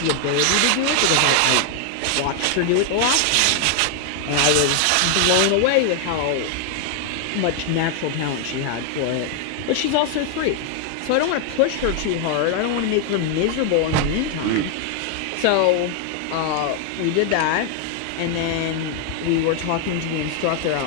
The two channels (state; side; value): different; both; correlation 0.00